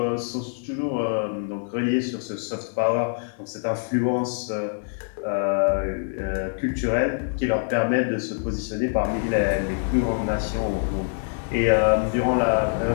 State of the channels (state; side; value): silent; right; 62 dB below the other